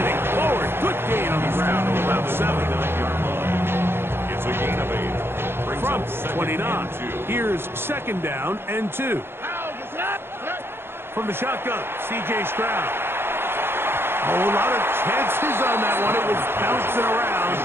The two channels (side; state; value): left; late; 0.11 ms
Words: forward. Good gain on the ground of about 7-9-yard line. It's a gain of 8. From 29. Here's 2nd down and 2. From the shotgun, C.J. Stroud. A lot of chances on that one. It was bouncing around,